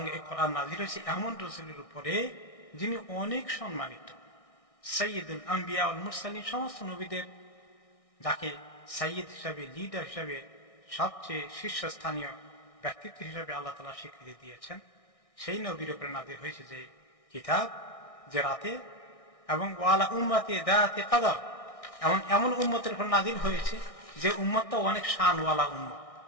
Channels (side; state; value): right; late; 1.6 ms